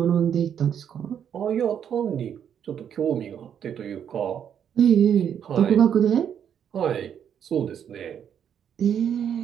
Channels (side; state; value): left; quieter; 8.7 dB